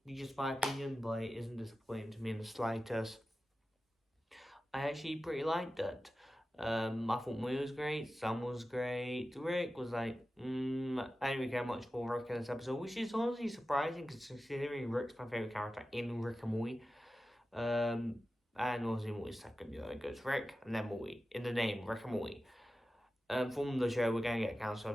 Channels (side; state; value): both; normal; correlation 0.94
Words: be just my opinion, but it isn't disappointing to me in the slightest. I actually pretty liked it. I thought Moy was great, Sam was great, Rick was like, I didn't really care much for Rick in this episode, which is honestly surprising considering Rick's my favourite character in Rick and Morty. And obviously Morty's second, it goes Rick and then Morty, in the name, Rick and Morty. From the show, we're going to get Council